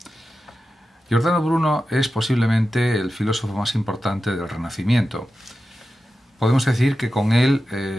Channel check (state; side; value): normal; both; correlation 0.92